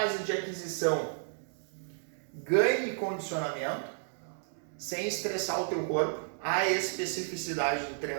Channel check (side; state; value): left; silent; 56 dB below the other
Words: de aquisição, ganhe condicionamento, sem estressar o teu corpo, a especificidade do